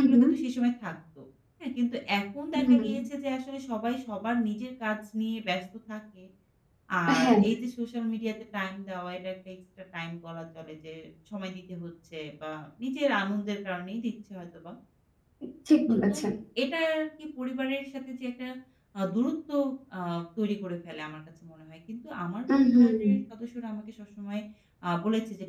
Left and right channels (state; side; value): identical; both; correlation 1.00